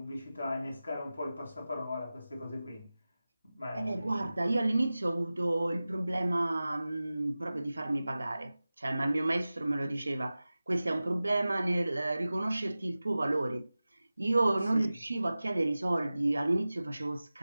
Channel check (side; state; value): both; inverted; correlation -0.96